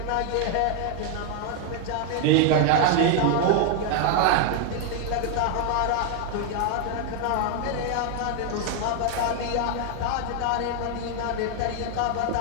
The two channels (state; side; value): different; both; correlation 0.00